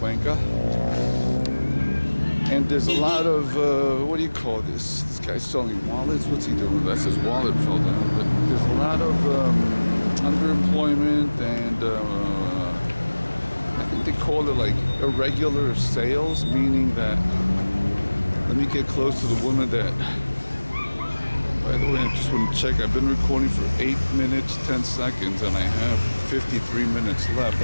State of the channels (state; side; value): inverted; both; correlation -1.00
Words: And there's a lot of, what do you call this? This guy's selling wallets. What's he doing? That's his wallet fell down. But there's a lot of underemployment and I think they call it like irregular sales, meaning that, let me get close to the woman that, by the way, I just want to check. I've been recording for 8 minutes, 10 seconds, and I have 53 minutes left.